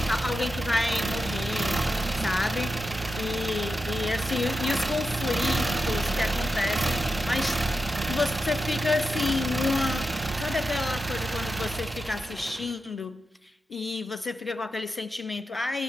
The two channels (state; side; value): normal; both; correlation 0.88